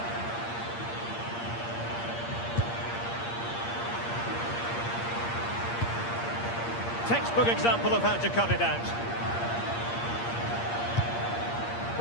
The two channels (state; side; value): late; right; 8.6 ms